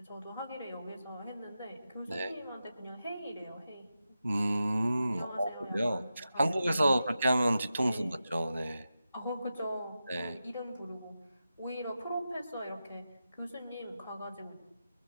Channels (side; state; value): both; inverted; correlation -0.91